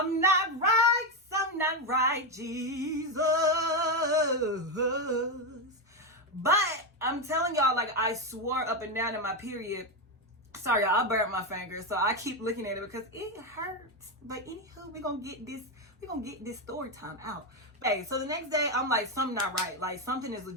not right, Jesus. But I'm telling y'all, like, I swore up and down in my period. Sorry, y'all, I burnt my finger, so I keep looking at it because it hurts. But anywho, we're gonna get this story time out. Hey, so the next day, I'm like, something not right. Like, something is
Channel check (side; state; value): both; normal; correlation 0.09